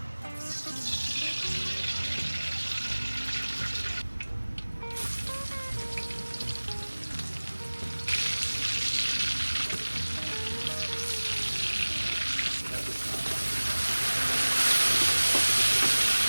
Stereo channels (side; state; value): both; inverted; correlation -1.00